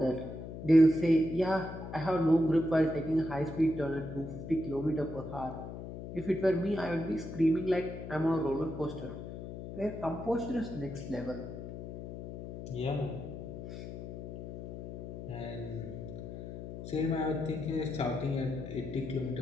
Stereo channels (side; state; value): left; noise; hum, 9 dB below the sound